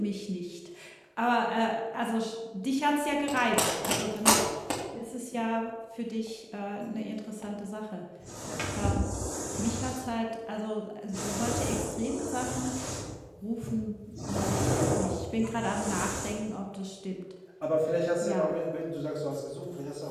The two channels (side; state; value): both; identical; correlation 1.00